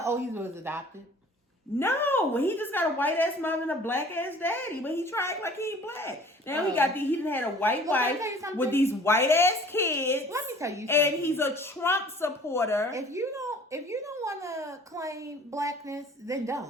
Oh, he was adopted? No, he just got a white ass mom and a black ass daddy, but he tried like he ain't black. Now he done had a white wife with these white ass kids. Let me tell you something. And he's a Trump supporter. If you don't want to claim blackness, then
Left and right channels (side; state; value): both; normal; correlation 0.50